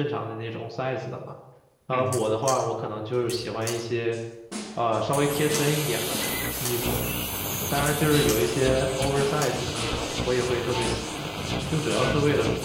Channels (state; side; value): identical; both; correlation 1.00